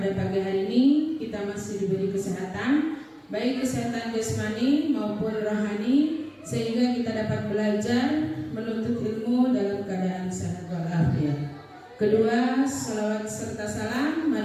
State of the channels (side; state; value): both; identical; correlation 1.00